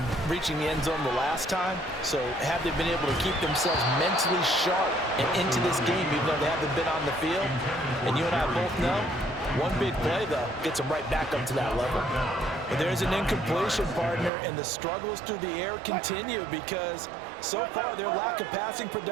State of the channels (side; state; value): left; drops out; at 14.3 s